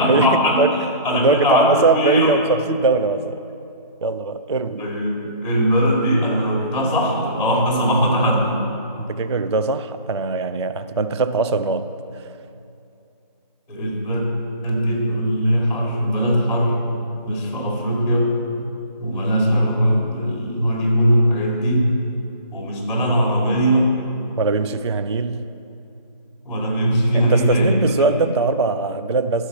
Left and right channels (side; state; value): both; inverted; correlation -0.46